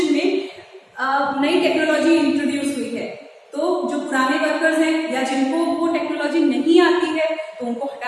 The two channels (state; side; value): identical; both; correlation 1.00